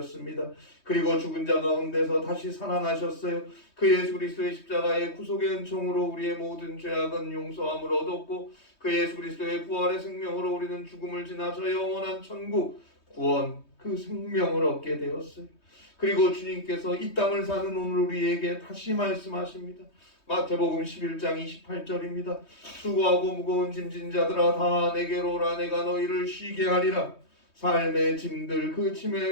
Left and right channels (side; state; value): right; late; 3.2 ms